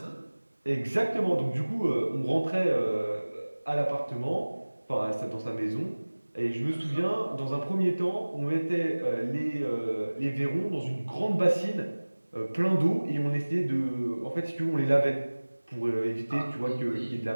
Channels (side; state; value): both; inverted; correlation -1.00